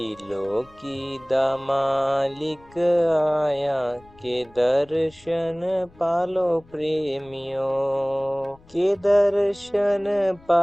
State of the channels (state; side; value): noise; left; rumble, 26 dB below the sound